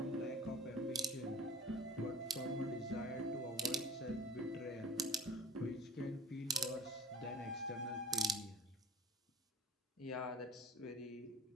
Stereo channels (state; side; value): normal; both; correlation 0.39